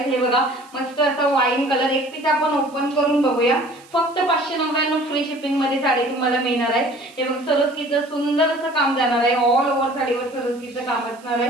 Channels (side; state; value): right; noise; hiss, 26 dB below the sound